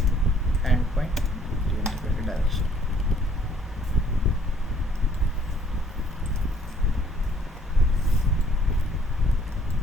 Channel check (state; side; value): normal; both; correlation 0.63